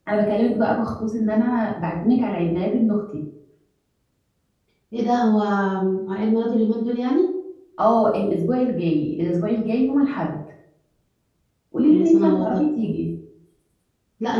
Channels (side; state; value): both; identical; correlation 1.00